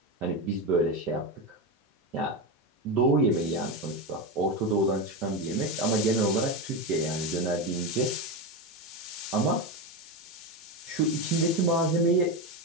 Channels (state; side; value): normal; both; correlation 0.14